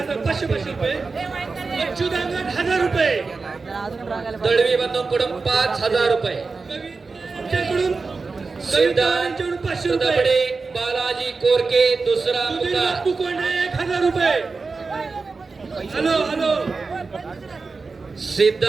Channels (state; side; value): quieter; left; 4.2 dB